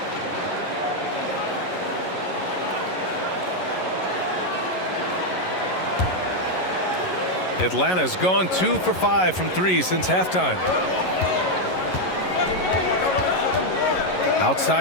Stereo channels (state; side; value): late; right; 11 ms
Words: Atlanta's gone 2 for 5 from 3 since halftime.